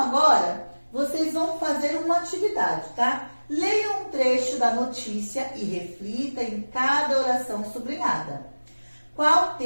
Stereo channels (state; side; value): inverted; both; correlation -1.00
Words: vocês vão fazer uma atividade, tá? Leiam um trecho da notícia e reflita em cada oração sublinhada. Qual